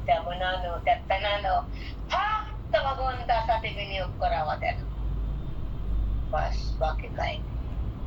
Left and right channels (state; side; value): identical; both; correlation 1.00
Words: त्या मनानं, त्या तनानं फक्त भगवंतासाठी विनियोग करावा त्यानं. बस, बाकी काय,